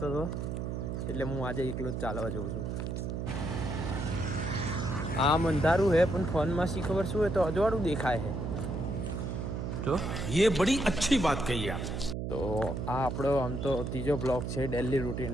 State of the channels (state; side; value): noise; right; hum, 3 dB below the sound